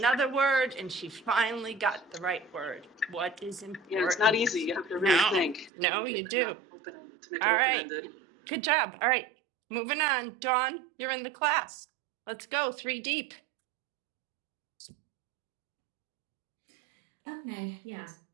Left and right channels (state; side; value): drops out; left; at 5.7 s